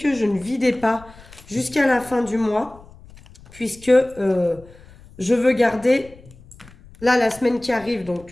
je ne vidais pas jusqu'à la fin du mois, puisque je veux garder, là, la semaine qui arrive,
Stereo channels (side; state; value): left; noise; rumble, 23 dB below the sound